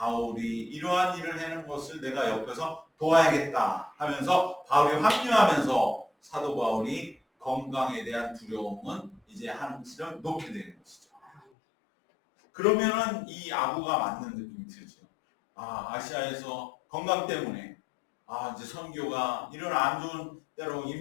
이러한 일을 하는 것을 내가 옆에서 도와야겠다 하면서 바울이 합류하면서 사도 바울이 건강에 대한 두려움은 이제 한시름 놓게 되는 것이죠. 그러면은 이 아부가 맞는 느낌이 들죠. 아시아에서 건강 때문에 이제 선교가 이런 안 좋은 때로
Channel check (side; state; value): right; drops out; at 11.4 s